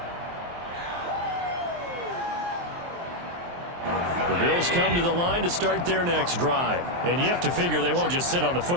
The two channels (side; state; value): left; late; 23 ms